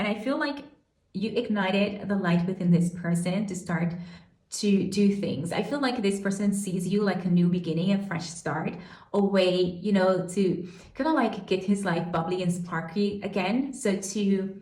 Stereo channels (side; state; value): both; identical; correlation 1.00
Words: I feel like you ignited the light within this person to start to do things. I feel like this person sees you like a new beginning, a fresh start, a way, to kind of like get his life bubbly and sparky again.